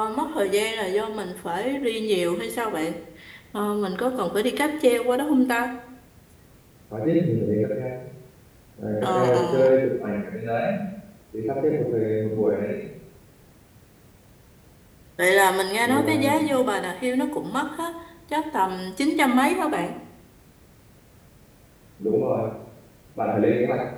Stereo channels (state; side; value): identical; both; correlation 1.00